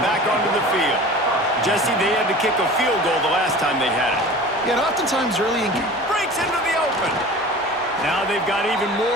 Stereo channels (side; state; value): both; normal; correlation 0.39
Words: back onto the field. Jesse, they had to kick a field goal the last time they had it. Yeah, and oftentimes early in... Breaks into the open. Now they've got even